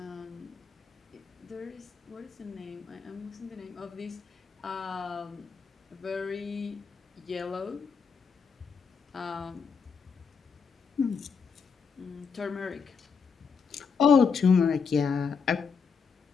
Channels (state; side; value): quieter; right; 5.7 dB